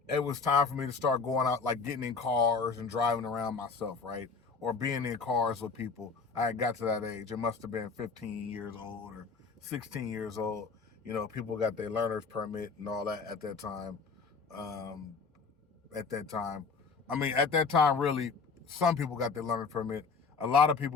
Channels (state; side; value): quieter; right; 4.8 dB